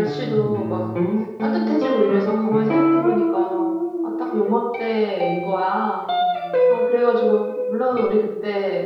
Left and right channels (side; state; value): both; identical; correlation 1.00